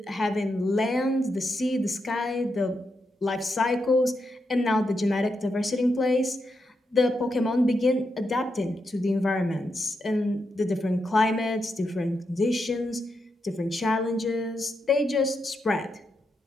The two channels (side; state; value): both; normal; correlation 0.84